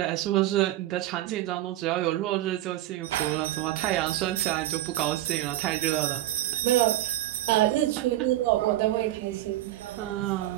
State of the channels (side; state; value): left; quieter; 14.8 dB